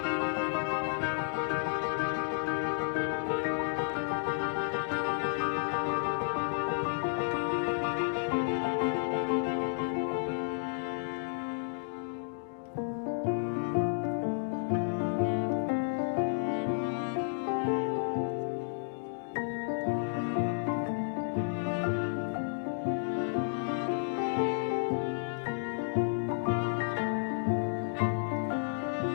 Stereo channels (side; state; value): right; silent; digital silence